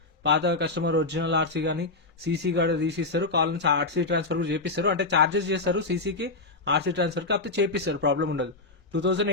పాత కస్టమర్ ఒరిజినల్ ఆర్సీ గానీ సీసీ గానీ తీసిస్తారు. కాల్ నుంచి ఆర్సీ ట్రాన్స్ఫర్ కూడా చేపిస్తారు. అంటే చార్జెస్ చేస్తారు సీసీకి, ఆర్సీ ట్రాన్స్ఫర్ కాకపోతే చేపిస్తారు. ప్రాబ్లం ఉండదు.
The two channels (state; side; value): quieter; right; 3.3 dB